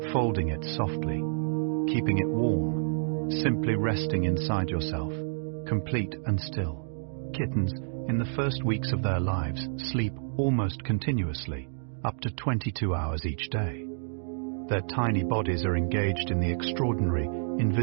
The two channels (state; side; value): silent; left; digital silence